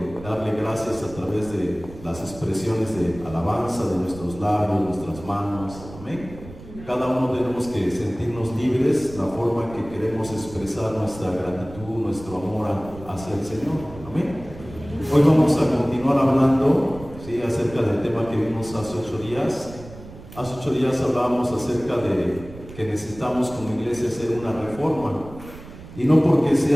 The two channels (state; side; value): noise; right; rumble, 16 dB below the sound